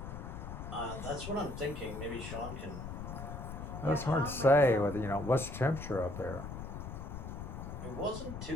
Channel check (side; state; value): left; noise; rumble, 8 dB below the sound